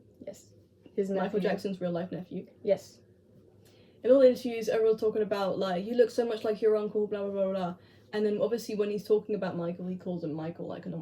Yes. His nephew. Michael Jackson's real life nephew. Yes. In all the interviews, everyone's talking about, like, you look so much like your uncle, blah, blah, blah, blah. And then, obviously, when he's talking about Michael, he calls him Michael like a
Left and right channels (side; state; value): both; identical; correlation 1.00